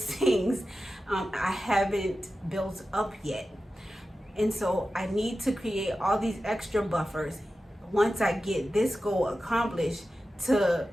I haven't built up yet. And so I need to create all these extra buffers once I get this goal accomplished, to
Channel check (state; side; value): normal; both; correlation 0.93